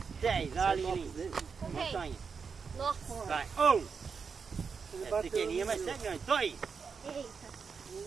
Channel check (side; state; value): left; quieter; 5.7 dB